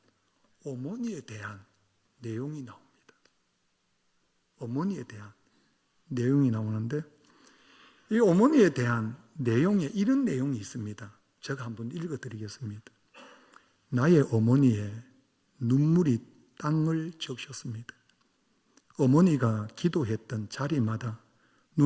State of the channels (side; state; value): both; identical; correlation 1.00